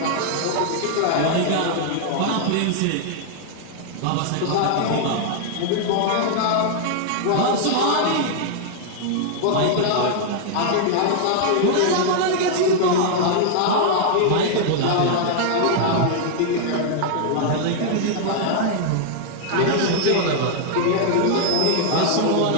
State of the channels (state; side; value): different; both; correlation -0.01